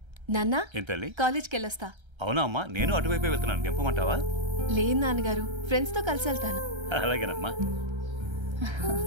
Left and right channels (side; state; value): left; late; 1.3 ms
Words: నాన్న ఏంటల్లి? కాలేజ్కి వెళ్ళొస్తా. అవునా అమ్మా, నేను అటువైపే వెళ్తున్నాను. నింపమంటావా? లేదు నాన్నగారు, ఫ్రెండ్స్ తో కలిసి వెళ్తాను. అలాగేనమ్మా,